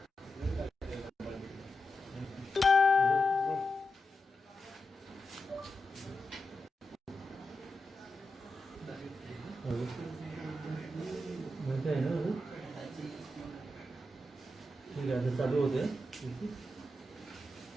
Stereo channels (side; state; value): both; normal; correlation 0.89